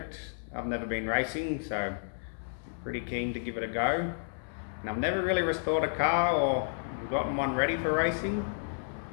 I've never been racing, so I'm pretty keen to give it a go. And I've never really restored a car or gotten one ready for racing.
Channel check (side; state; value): right; silent; 57 dB below the other